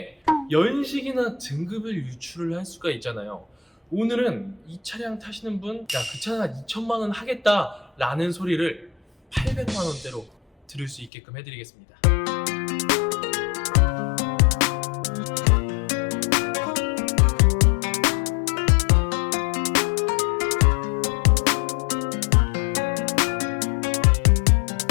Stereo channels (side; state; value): right; drops out; at 11.1 s